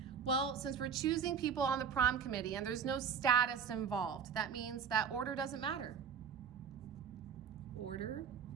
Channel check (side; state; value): left; quieter; 7.0 dB